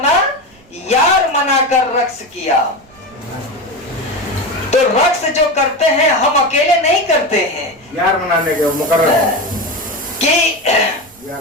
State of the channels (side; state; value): right; noise; rumble, 29 dB below the sound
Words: यार मनाकर रक्स किया। तो रक्स जो करते हैं हम अकेले नहीं करते हैं, यार मनाने के मुकर्रर कि